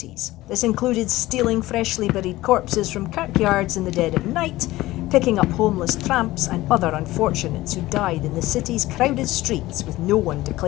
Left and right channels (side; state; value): right; quieter; 17.4 dB